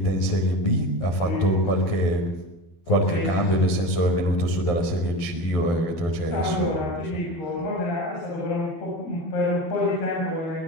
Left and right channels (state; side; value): late; right; 12 ms